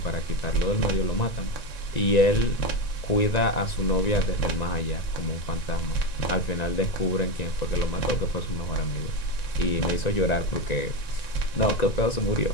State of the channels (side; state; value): right; late; 1.9 ms